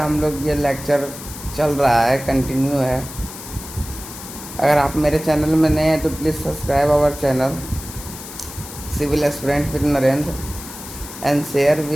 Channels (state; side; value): noise; left; hiss, 13 dB below the sound